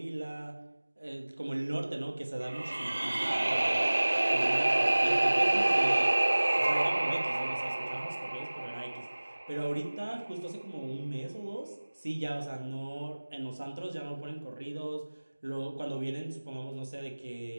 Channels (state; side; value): inverted; both; correlation -1.00